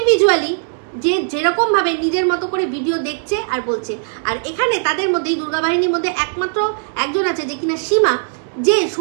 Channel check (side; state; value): left; silent; 67 dB below the other